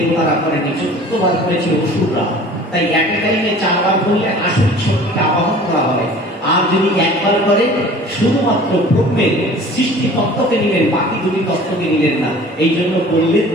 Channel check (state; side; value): normal; both; correlation 0.46